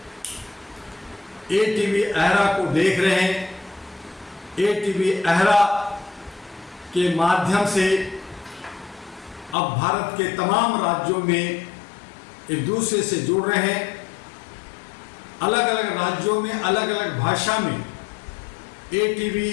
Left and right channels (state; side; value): drops out; right; at 9.6 s